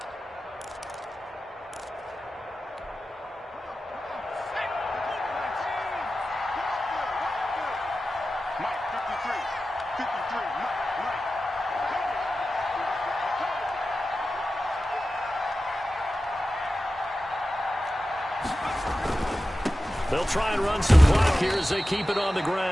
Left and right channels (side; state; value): both; normal; correlation 0.94